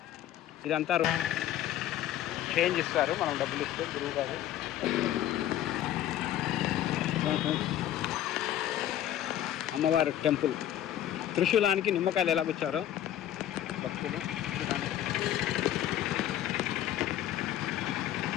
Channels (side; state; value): right; quieter; 12.0 dB